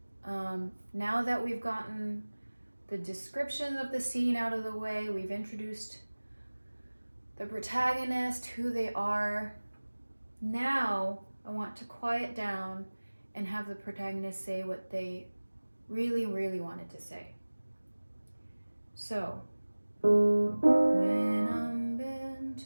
Now that we've gotten the description of the scene out of the way, we've introduced the protagonist, who they are. Now I want to quiet down and have the protagonist say what they really, really wanted to say. So, when I'm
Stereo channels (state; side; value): inverted; both; correlation -1.00